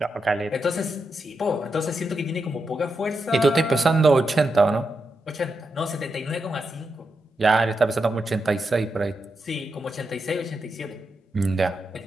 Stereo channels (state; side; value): normal; both; correlation 0.86